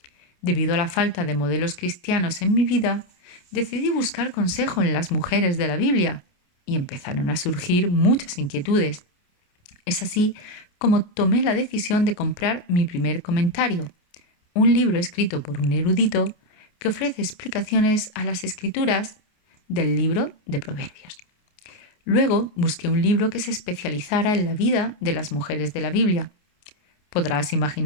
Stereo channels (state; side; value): late; right; 28 ms